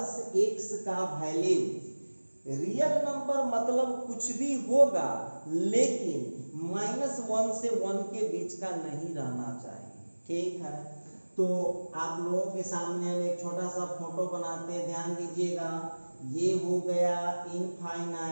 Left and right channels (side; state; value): both; inverted; correlation -1.00